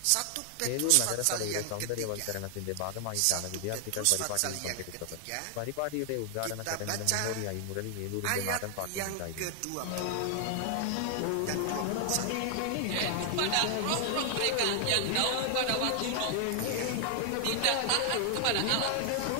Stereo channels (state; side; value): different; both; correlation 0.00